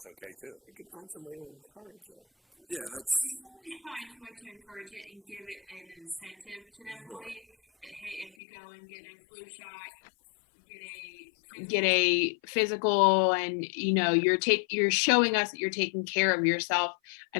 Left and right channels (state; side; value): drops out; right; at 8.3 s